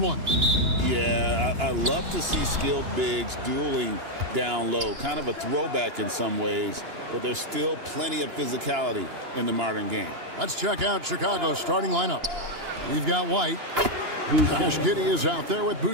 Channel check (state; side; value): late; left; 2.9 ms